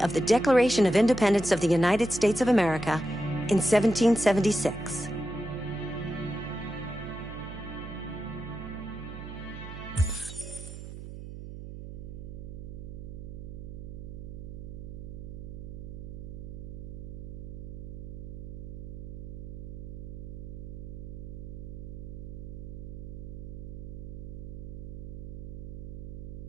the Declaration of Independence of the United States of America in 1776.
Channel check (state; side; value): noise; right; hum, 9 dB below the sound